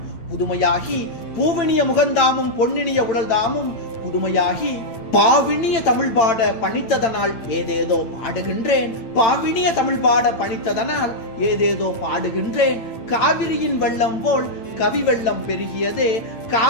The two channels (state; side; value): late; right; 8.9 ms